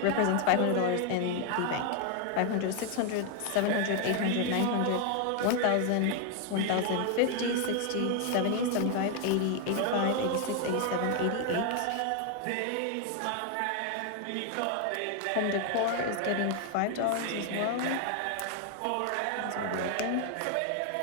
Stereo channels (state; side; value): different; both; correlation 0.00